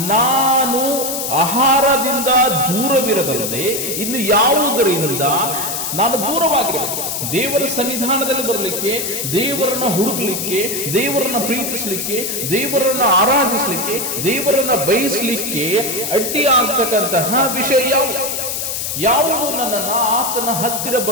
ನಾನು ಆಹಾರದಿಂದ ದೂರವಿರದಲ್ಲದೆ ಇನ್ನು ಯಾವುದರಿಂದ ನಾನು ದೂರವಾಗಿರಬೇಕು. ದೇವರ ಸನ್ನಿಧಾನದಲ್ಲಿ ಬರಲಿಕ್ಕೆ, ದೇವರನ್ನ ಹುಡುಕಲಿಕ್ಕೆ, ದೇವರನ್ನ ಪ್ರೀತಿಸಲಿಕ್ಕೆ, ದೇವರನ್ನ ಆರಾಧಿಸಲಿಕ್ಕೆ, ದೇವರನ್ನ ಬಯಸಲಿಕ್ಕೆ ಅಡ್ಡಿ ಆಗ್ತಕ್ಕಂತಹ ವಿಷಯ ಯಾವುದು ನನ್ನನ್ನ ಆತನ ಹತ್ತಿರ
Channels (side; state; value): left; noise; hiss, 3 dB below the sound